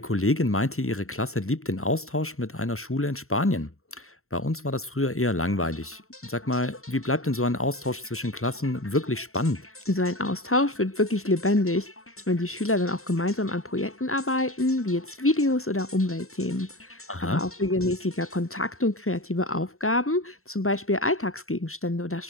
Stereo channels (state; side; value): late; right; 0.63 ms